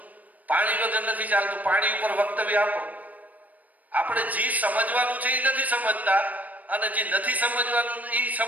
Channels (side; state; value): left; late; 0.075 ms